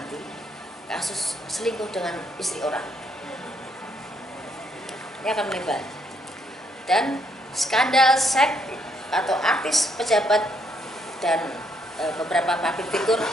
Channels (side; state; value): both; normal; correlation 0.72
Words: Kasus selingkuh dengan istri orang ini akan melebar, dan skandal seks atau artis, pejabat dan beberapa public figure